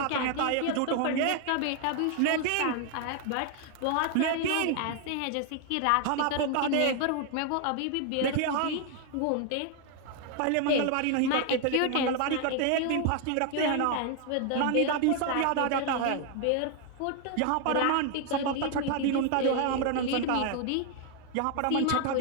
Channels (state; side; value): different; both; correlation 0.00